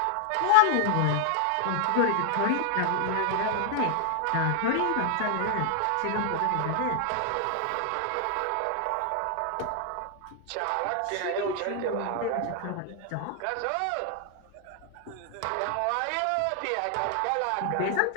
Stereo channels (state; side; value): different; both; correlation 0.00